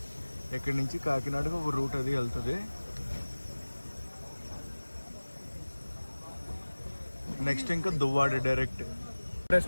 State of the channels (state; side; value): inverted; both; correlation -1.00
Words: ఇక్కడి నుంచి కాకినాడకు ఒక రూట్ అది వెళ్తుంది. నెక్స్ట్ ఇంకా దువ్వాడ డైరెక్ట్.